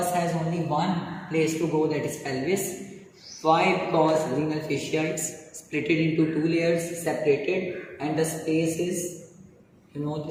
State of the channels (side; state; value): both; identical; correlation 1.00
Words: has only one place to go, that is pelvis. Why? Because renal fascia is split into two layers, separated, and the space is,